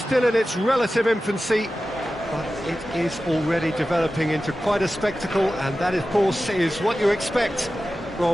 in its relative infancy, but it is already developing into quite a spectacle, and that, of course, is what you expect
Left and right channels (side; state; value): both; normal; correlation 0.94